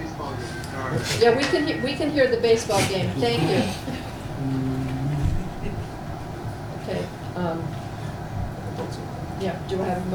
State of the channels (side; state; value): both; identical; correlation 1.00